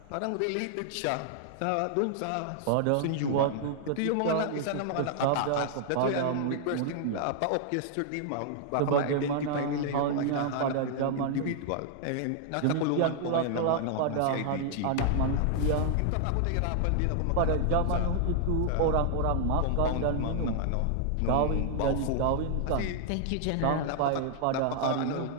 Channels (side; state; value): both; different; correlation -0.01